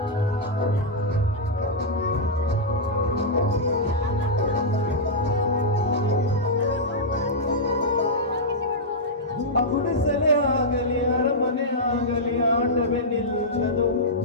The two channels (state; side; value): normal; both; correlation -0.08